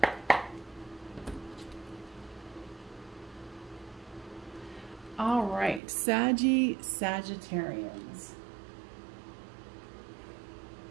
All right, Sagittarians.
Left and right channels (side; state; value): left; drops out; at 5.8 s